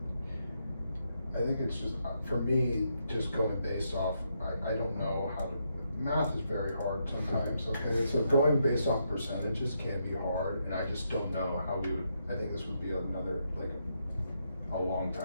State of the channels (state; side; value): inverted; both; correlation -0.80